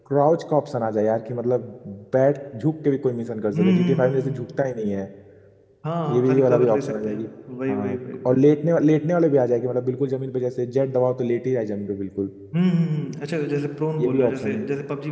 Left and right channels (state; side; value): identical; both; correlation 1.00